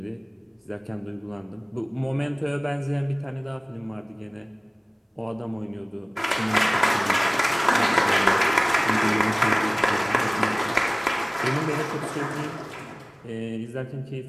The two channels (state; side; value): identical; both; correlation 1.00